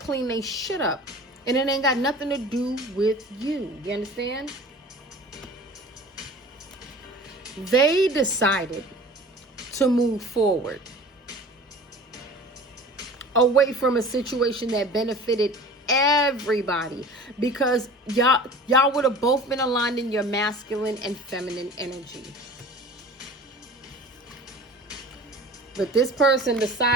their shit up. And it ain't got nothing to do with you. You understand? They decided to move forward away from a situation that benefited everybody, because y'all would have both been aligned in your masculine and feminine energy. But this person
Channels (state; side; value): normal; both; correlation 0.41